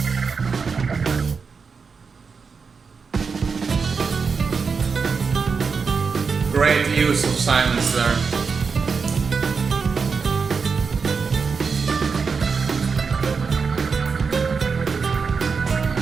Great use of silence there.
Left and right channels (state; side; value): quieter; left; 5.3 dB